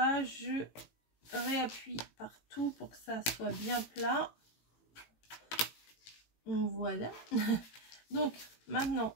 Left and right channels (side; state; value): right; late; 18 ms